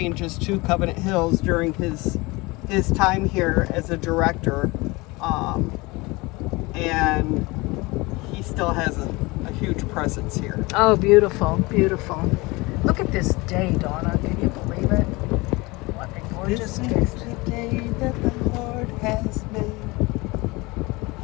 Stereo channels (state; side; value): quieter; right; 23.7 dB